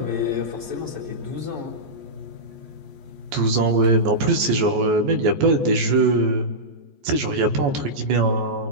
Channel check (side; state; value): left; late; 14 ms